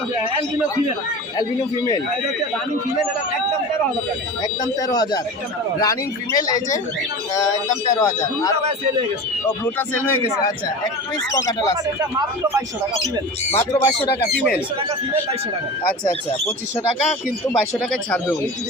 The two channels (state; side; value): normal; both; correlation 0.32